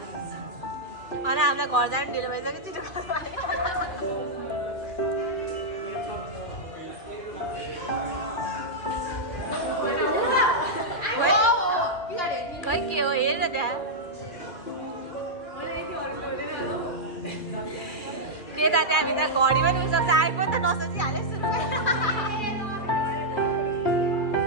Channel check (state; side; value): late; right; 2.3 ms